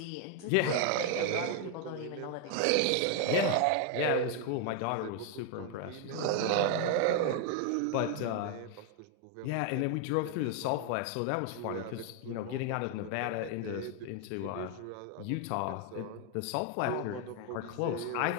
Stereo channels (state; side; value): different; both; correlation 0.01